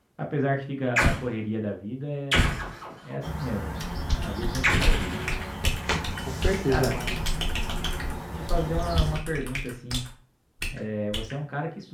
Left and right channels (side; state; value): both; identical; correlation 1.00